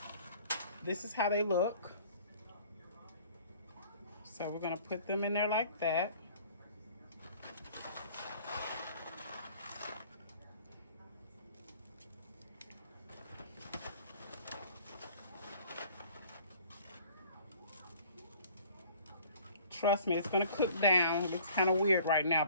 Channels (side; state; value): both; inverted; correlation -0.51